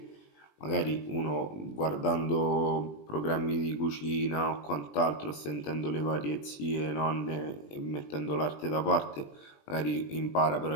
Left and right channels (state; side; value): late; right; 20 ms